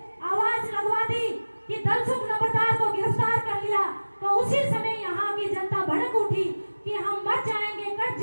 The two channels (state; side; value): inverted; both; correlation -1.00